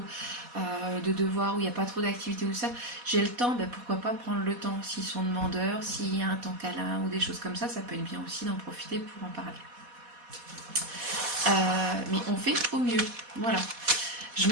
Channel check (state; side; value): late; left; 4.1 ms